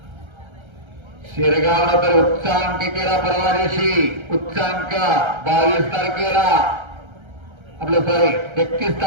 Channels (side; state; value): left; late; 1.3 ms